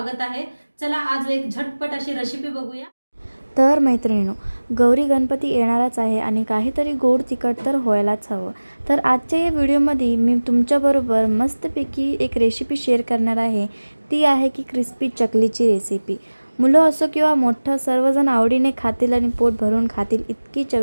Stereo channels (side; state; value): both; inverted; correlation -1.00